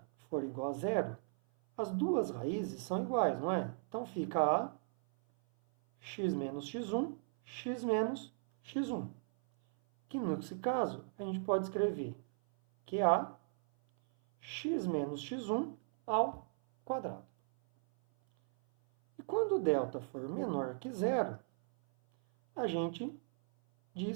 for igual a zero, as duas raízes são iguais, não é? Então fica a x menos x1, x menos x1. Que nesse caso, a gente pode escrever que é a x menos x1 ao quadrado. E quando delta for menor que zero, a gente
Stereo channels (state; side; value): silent; left; 53 dB below the other